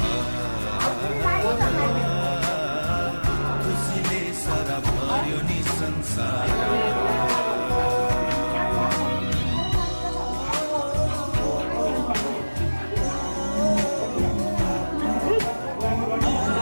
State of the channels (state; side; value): inverted; both; correlation -1.00